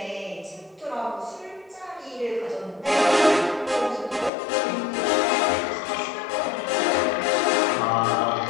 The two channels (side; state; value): right; drops out; at 4.3 s